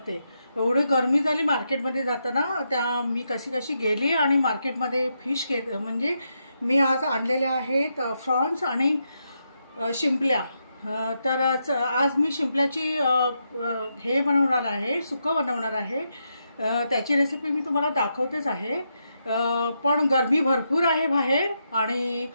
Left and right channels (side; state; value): both; inverted; correlation -0.82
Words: एवढी गरमी झाली मार्केटमध्ये जाताना. त्या मी कशी गेली आणि मार्केटमध्ये फिश म्हणजे मी आज आणलेल्या आहेत फ्रॉन्स आणि शिंपल्या. तर आज मी शिंपल्याची हे बनवणार आहे, सुकं बनवणार आहे. त्याची रेसिपी मी तुम्हाला दाखवतेच आहे. पण गरमी भरपूर आहे बाहेर आणि